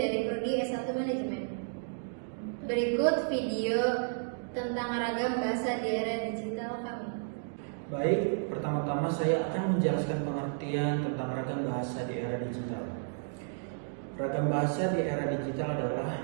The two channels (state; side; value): silent; left; digital silence